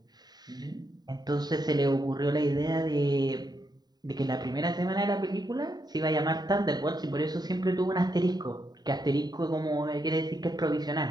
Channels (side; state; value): left; late; 0.20 ms